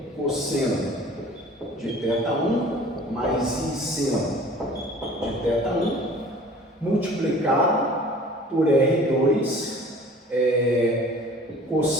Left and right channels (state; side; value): normal; both; correlation 0.47